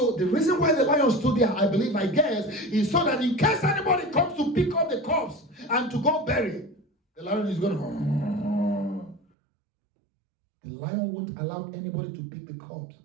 the reason why the lion stood there, I guess, is so that in case anybody comes to pick up the corpse and to go bury, the lion is going to... The lion won't allow anybody to pick the corpse.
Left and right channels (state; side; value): drops out; left; at 9.2 s